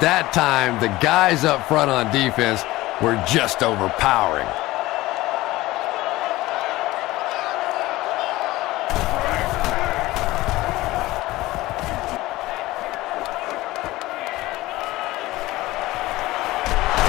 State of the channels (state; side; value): quieter; right; 18.2 dB